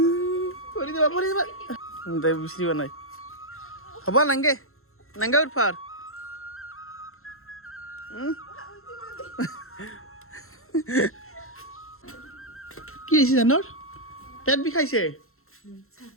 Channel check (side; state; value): right; late; 0.62 ms